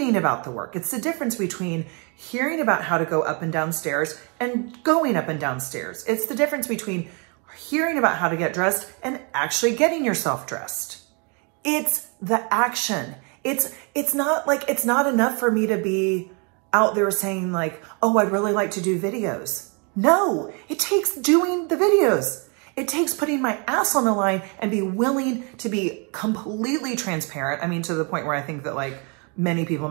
about the work. It's the difference between hearing about how to go up and down stairs and going up and down stairs. It's the difference between hearing about how to get dressed and actually getting yourself dressed. It's the action. It's not enough for me to be out there saying like, oh, I'd really like to do videos. No, it takes doing the videos. It takes putting my ass on the line and be willing to be completely transparent. I mean, to the point where I think that like many people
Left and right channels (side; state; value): left; quieter; 34.7 dB